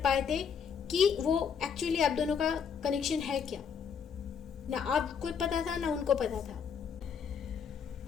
पाए थे कि वो एक्चुअली आप दोनों का कनेक्शन है क्या। ना आपको पता था ना उनको पता था।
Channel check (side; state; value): right; quieter; 6.9 dB